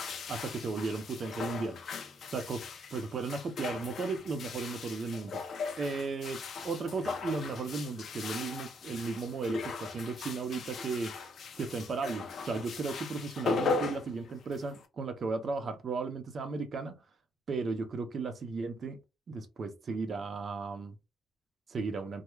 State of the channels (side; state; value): both; normal; correlation 0.71